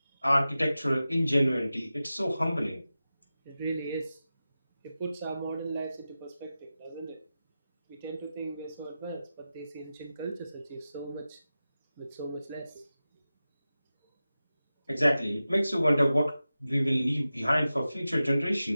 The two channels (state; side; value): inverted; both; correlation -0.94